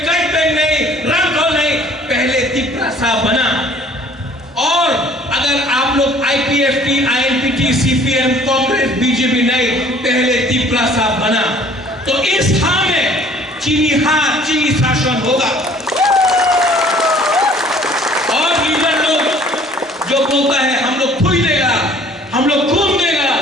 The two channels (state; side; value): normal; both; correlation 0.54